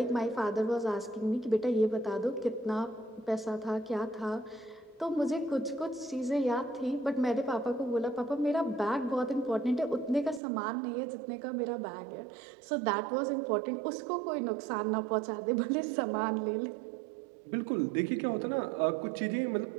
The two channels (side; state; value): left; drops out; at 10.4 s